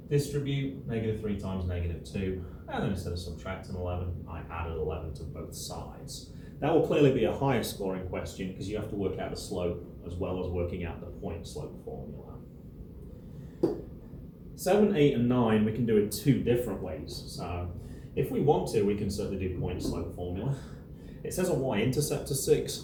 Distribute, negative 3 times negative 2, and then instead of subtracting 11, I added 11 to both sides. That will clearly be a higher scoring question because you have to work out the slope as well as working out the point slope formula. 7, 8, and 9 we can do it 2 different ways. So if we want to, we can certainly do point slope formula. It says a y-intercept of 6,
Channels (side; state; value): both; identical; correlation 1.00